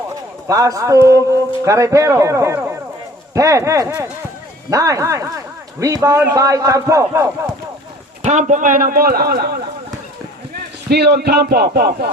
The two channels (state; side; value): normal; both; correlation 0.50